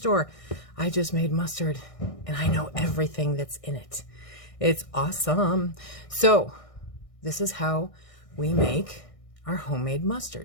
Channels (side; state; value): right; late; 1.6 ms